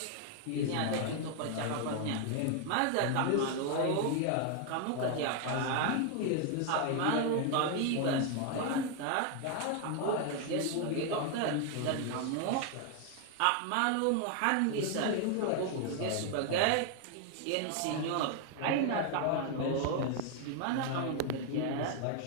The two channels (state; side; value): different; both; correlation 0.00